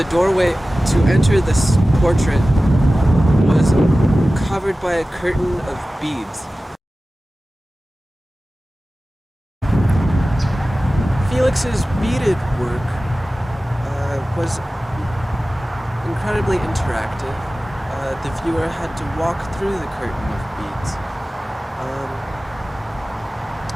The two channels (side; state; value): both; normal; correlation 0.96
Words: doorway to enter this portrait was covered by a curtain of beads. Felix's beaded work was incredibly interactive. The viewer had to walk through the curtain of beads.